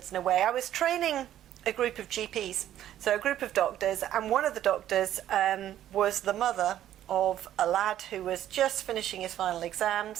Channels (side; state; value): left; quieter; 11.9 dB